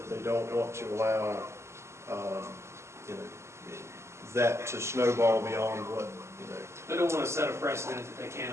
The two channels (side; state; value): left; late; 0.13 ms